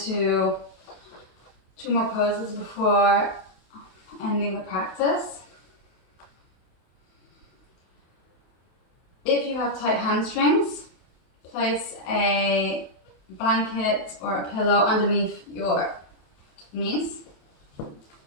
2 more poses before ending the practice. If you have tight hamstrings, place a blanket or a pillow underneath your knees.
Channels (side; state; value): right; late; 28 ms